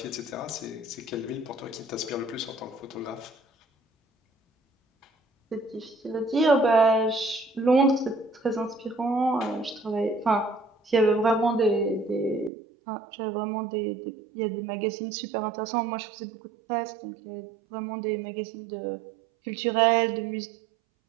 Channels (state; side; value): drops out; left; at 12.5 s